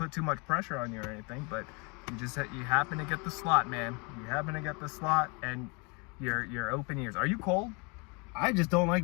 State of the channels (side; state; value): right; quieter; 31.1 dB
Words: too much pressure on you or anything, but you happen to get the slot, man. You happen to get the slot, and you're open ears. Are you cold? I just don't